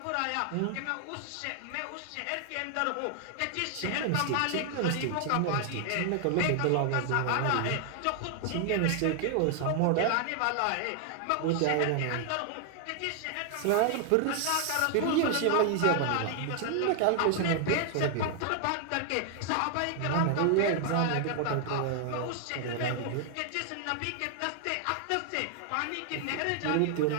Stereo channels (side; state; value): both; different; correlation 0.00